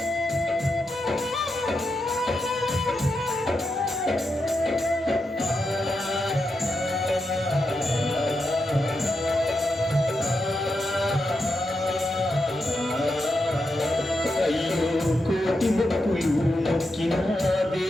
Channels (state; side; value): normal; both; correlation 0.86